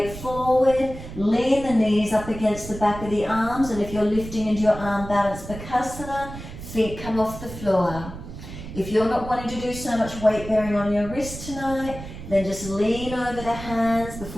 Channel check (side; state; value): right; noise; rumble, 11 dB below the sound